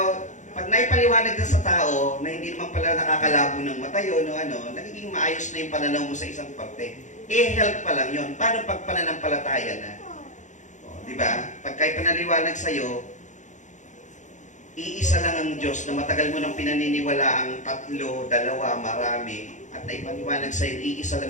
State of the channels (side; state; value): right; late; 0.35 ms